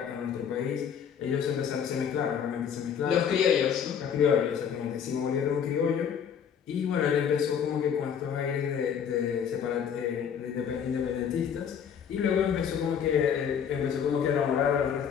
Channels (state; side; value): quieter; right; 7.9 dB